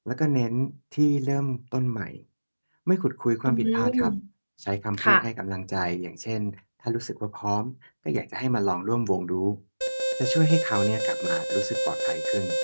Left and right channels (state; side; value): inverted; both; correlation -1.00